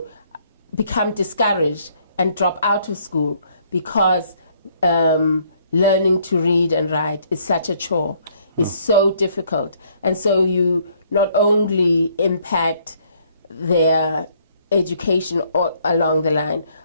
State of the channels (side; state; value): both; inverted; correlation -0.65